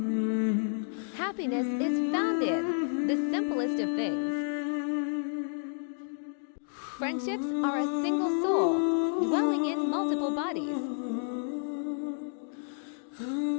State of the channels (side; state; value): right; silent; digital silence